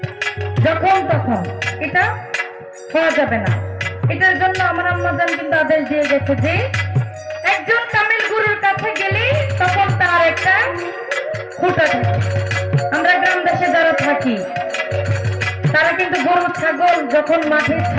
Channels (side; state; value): both; identical; correlation 1.00